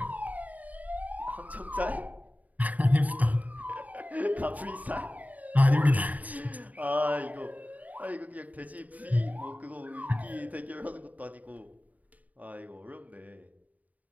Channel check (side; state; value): left; late; 0.074 ms